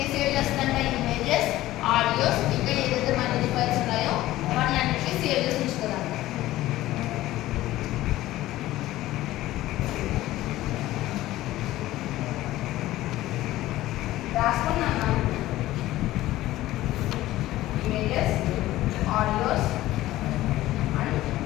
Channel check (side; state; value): right; quieter; 15.8 dB